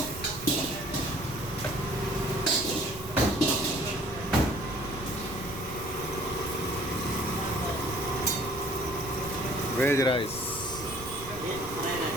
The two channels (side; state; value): right; noise; rumble, 14 dB below the sound